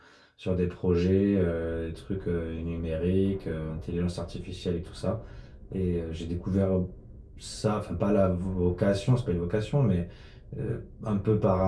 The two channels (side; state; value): both; identical; correlation 1.00